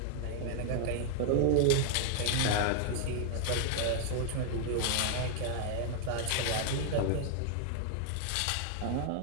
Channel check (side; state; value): both; different; correlation 0.00